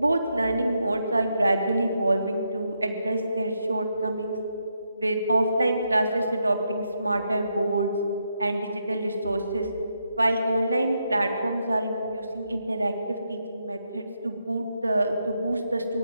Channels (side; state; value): both; inverted; correlation -0.80